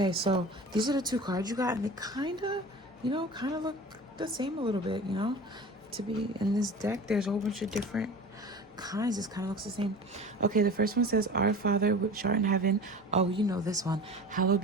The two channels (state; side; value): normal; both; correlation 0.36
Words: so these are the two cards you got, and they kind of look the same a little bit, you know. To be in this deck, there's a whole bunch of different kinds. This kind of looks the same. Okay, the first one says, Our Father which art in heaven. Oh, you know this one. Hallowed